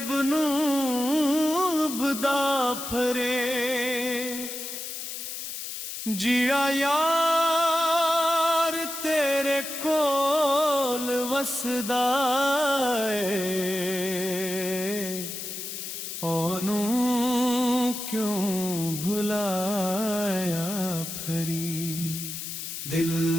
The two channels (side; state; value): left; noise; hiss, 7 dB below the sound